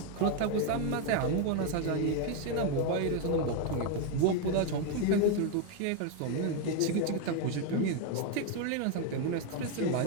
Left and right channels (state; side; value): different; both; correlation 0.01